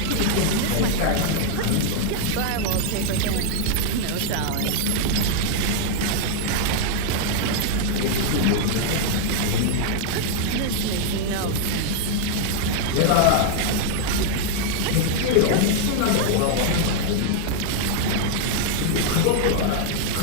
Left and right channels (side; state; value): both; different; correlation 0.00